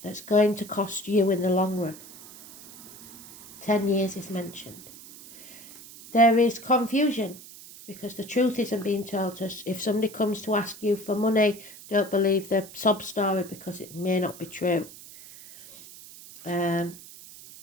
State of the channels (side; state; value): right; noise; hiss, 17 dB below the sound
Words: that's going to cost you in the long run. 10 years is mentioned. There is confusion because the truth isn't being told us. If somebody comes to ask you for money, don't believe the sob story because it may not be true.